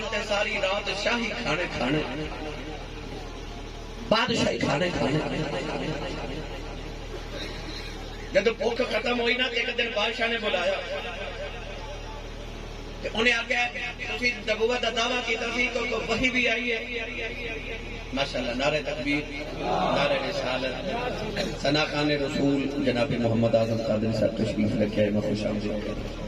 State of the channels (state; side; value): identical; both; correlation 1.00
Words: تے ساری رات شاہی کھانے کھانے بادشاہی کھانے کھانے جب بھوک ختم ہوئی نا ایک دن بادشاہ نے بلایا انہیں آگیا تسی نبوت کا دعویٰ کی تسی کو وحی بھی آئی ہے ماشاءاللہ نعرہ تکبیر نعرہ رسالت ثنا خان رسول جناب محمد اعظم قادری صاحب تشریف رکھے ہیں میں خوش آمدید